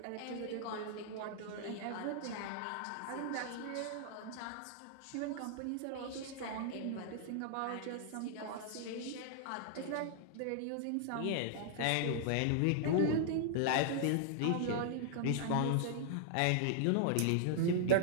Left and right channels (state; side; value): different; both; correlation -0.01